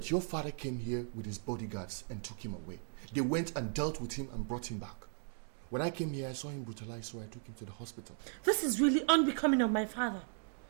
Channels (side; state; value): left; silent; 53 dB below the other